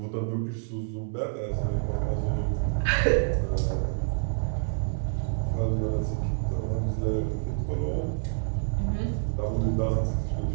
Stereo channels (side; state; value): left; silent; digital silence